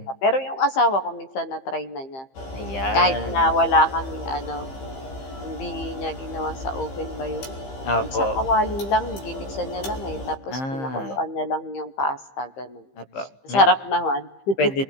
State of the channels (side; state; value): right; late; 15 ms